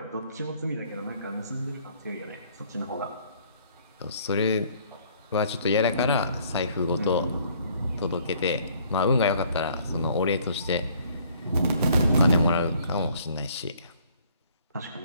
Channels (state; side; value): inverted; both; correlation -0.60